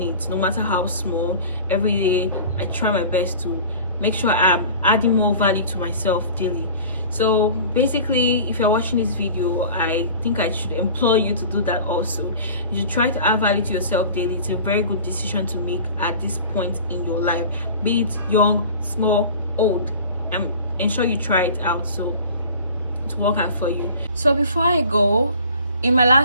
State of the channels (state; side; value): inverted; both; correlation -0.41